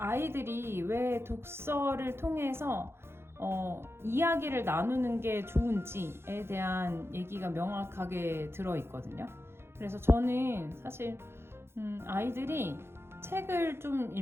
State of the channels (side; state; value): left; late; 0.12 ms